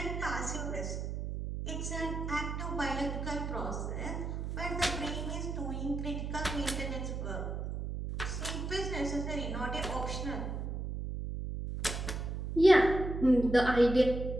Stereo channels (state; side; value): noise; right; hum, 4 dB below the sound